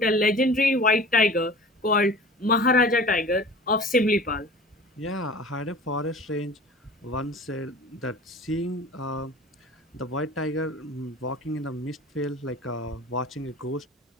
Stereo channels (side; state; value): both; normal; correlation 0.40